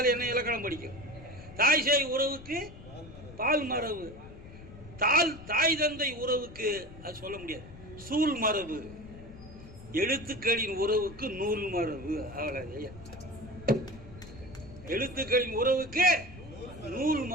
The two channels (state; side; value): noise; left; rumble, 16 dB below the sound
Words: என்ன இலக்கணம் படிக்கும்? தாய் சேய் உறவுக்கு பால் மரபு. தாய் தந்தை உறவுக்கு அது சொல்ல முடியாது, சூழ் மரபு. எழுத்துக்களின் உறவுக்கு நூல் மரபு. அவ்வளவு. எழுத்துக்களின் உறவுக்கு நூல்